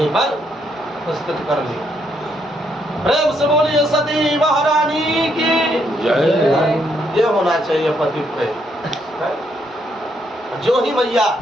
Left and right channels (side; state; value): both; normal; correlation 0.74